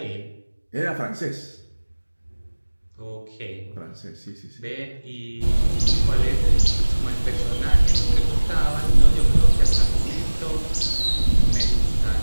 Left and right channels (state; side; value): inverted; both; correlation -1.00